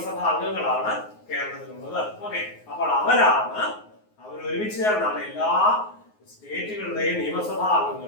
അംഗങ്ങളാണ് കേരളത്തിലുള്ളത്. ഓക്കെ, അപ്പോൾ അവർ ഒരുമിച്ച് ചേർന്നാണ് എല്ലാ സ്റ്റേറ്റുകളുടെയും നിയമസഭാ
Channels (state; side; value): late; right; 9.5 ms